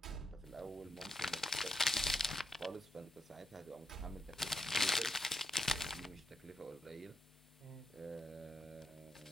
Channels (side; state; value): both; normal; correlation 0.83